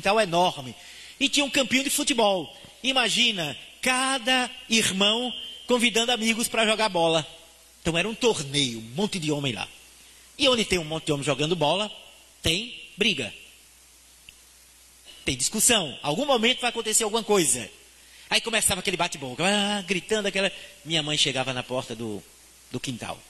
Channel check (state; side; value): identical; both; correlation 1.00